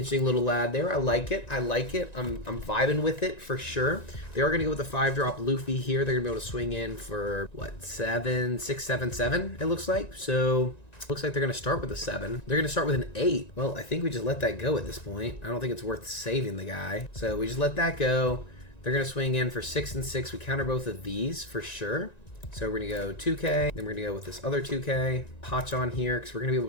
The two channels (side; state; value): right; late; 1.9 ms